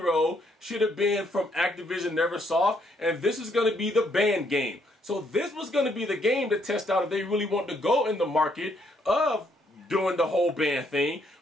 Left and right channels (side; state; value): both; normal; correlation 0.71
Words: should have been from Activision Neversoft, and this is going to be the band game. So this was going to be the game to test out if they really want to go in the market of doing the whole band thing.